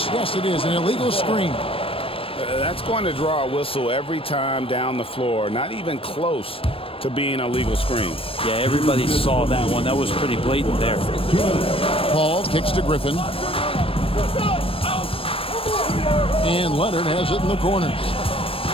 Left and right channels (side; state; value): right; late; 0.27 ms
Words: it is, an illegal screen. That's going to draw a whistle every time down the floor. Not even close to being a legal screen. Yeah, everybody saw that one. That was pretty blatant there. Paul kicks to Griffin. And Leonard has it in the corner.